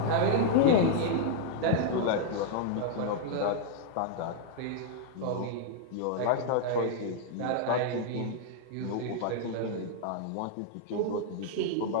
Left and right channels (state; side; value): different; both; correlation -0.01